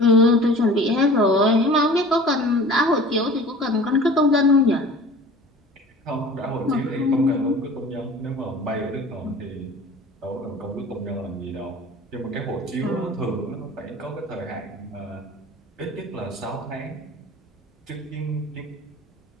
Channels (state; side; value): normal; both; correlation 0.43